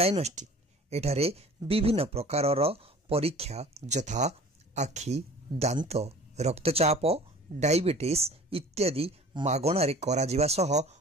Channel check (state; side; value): normal; both; correlation 0.45